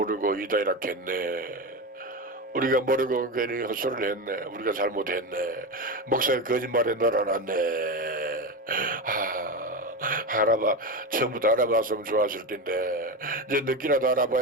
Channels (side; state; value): both; normal; correlation 0.19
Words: 이다이렇게 했네. 우리가 모르고 괜히 헛소리를 했네. 우리가 잘못했네. 목사가 거짓말에 놀아놨네. 처음부터 알아봤으면 좋았을 텐데 이제 늦게라도